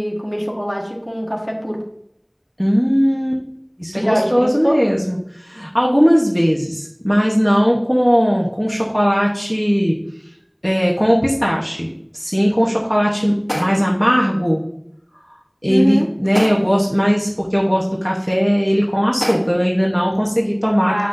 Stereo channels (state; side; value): identical; both; correlation 1.00